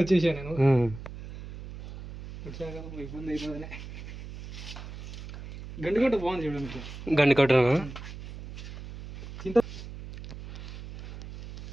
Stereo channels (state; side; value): noise; right; hum, 11 dB below the sound